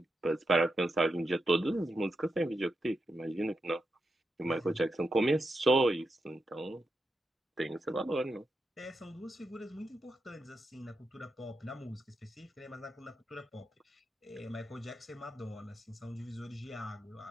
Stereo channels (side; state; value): both; normal; correlation 0.87